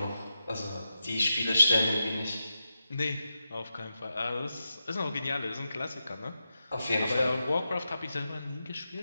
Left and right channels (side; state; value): both; inverted; correlation -0.89